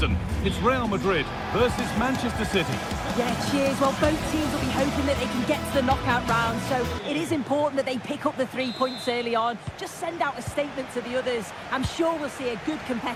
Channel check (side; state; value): both; identical; correlation 1.00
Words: It's Real Madrid versus Manchester City. Yeah, cheers. Well, both teams will be hoping that they can get to the knockout round, so it is important that they pick up the 3 points early on. Just send out a statement to the others. I'm sure we'll see a good